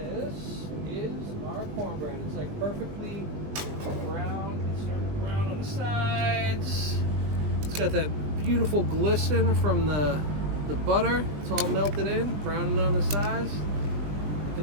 is our cornbread. It's like perfectly brown. It's starting to brown on the sides. It's got that beautiful glisten from the butter. It's all melted in, browning on the sides.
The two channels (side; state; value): left; late; 20 ms